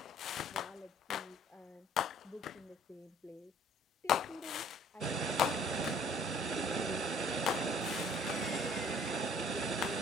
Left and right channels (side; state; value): both; normal; correlation 0.55